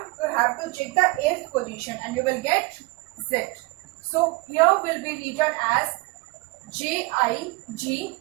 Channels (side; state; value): left; quieter; 24.0 dB